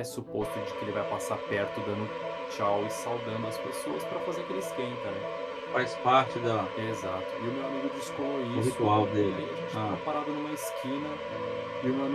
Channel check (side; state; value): both; identical; correlation 1.00